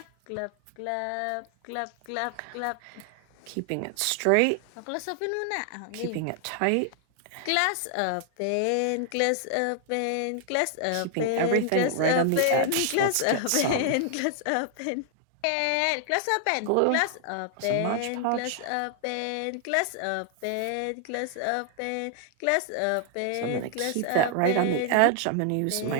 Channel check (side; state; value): both; different; correlation 0.00